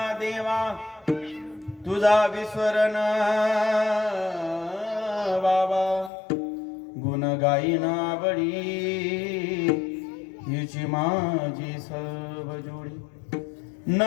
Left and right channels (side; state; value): right; drops out; at 6.1 s